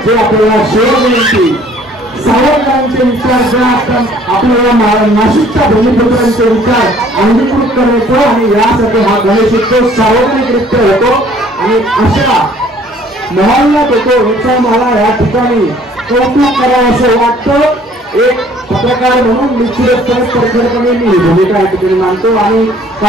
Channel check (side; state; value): both; normal; correlation 0.57